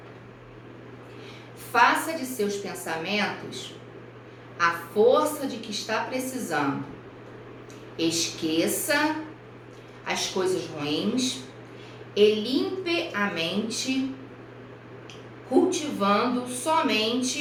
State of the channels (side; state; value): both; identical; correlation 1.00